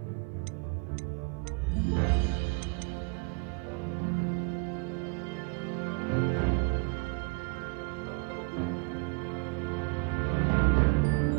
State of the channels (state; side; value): quieter; left; 32.8 dB